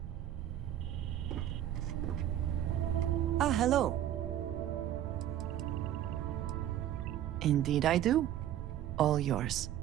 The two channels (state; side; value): quieter; left; 11.8 dB